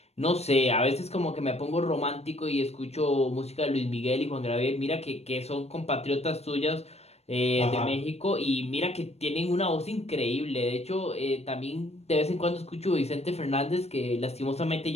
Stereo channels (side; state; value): right; late; 0.31 ms